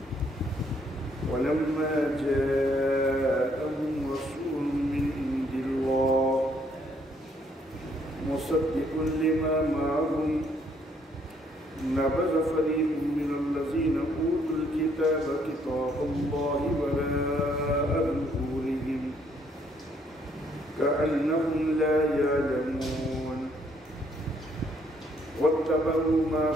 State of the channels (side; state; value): both; normal; correlation 0.68